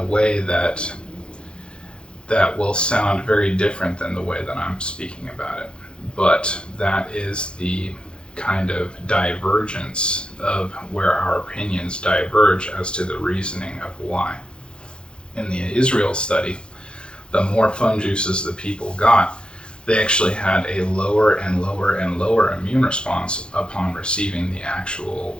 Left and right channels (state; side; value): late; right; 0.053 ms